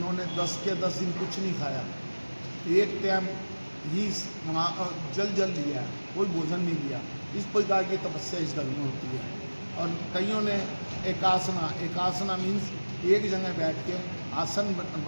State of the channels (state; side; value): inverted; both; correlation -1.00